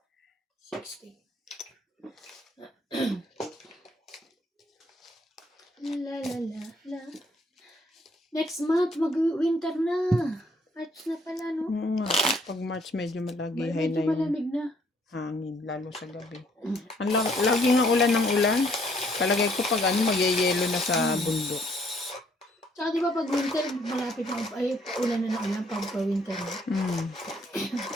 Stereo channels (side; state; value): both; normal; correlation 0.65